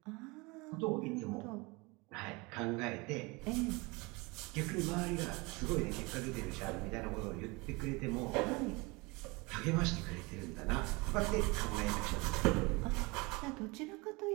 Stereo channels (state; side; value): quieter; left; 25.9 dB